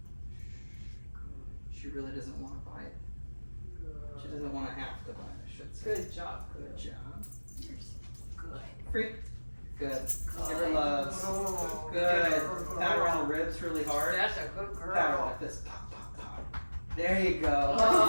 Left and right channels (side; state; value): both; inverted; correlation -1.00